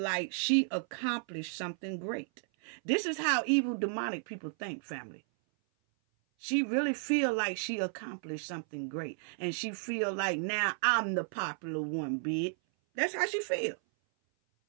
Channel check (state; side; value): silent; left; 55 dB below the other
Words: she accomplished something great. This is how evil demonic people think, family. She really feel like she accomplished something great. And she feel like now I'm the popular one, bitch. That's how she feel.